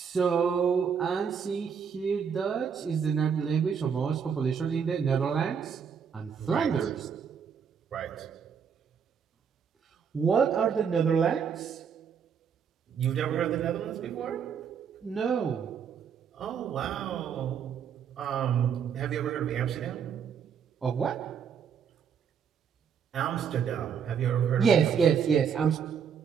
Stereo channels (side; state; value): left; quieter; 7.1 dB